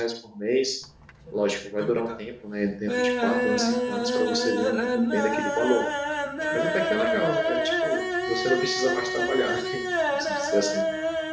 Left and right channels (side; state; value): both; identical; correlation 1.00